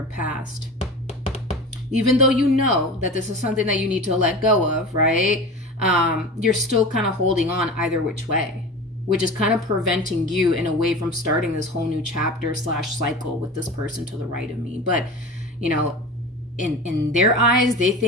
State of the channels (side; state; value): both; normal; correlation 0.33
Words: past. Even though you know that this is something that you need to let go of, right? You're still kind of holding on either which way, which is kind of preventing you in a way from starting this whole new chapter / cycle with this person to the right of me. But, you know, in their eyes, they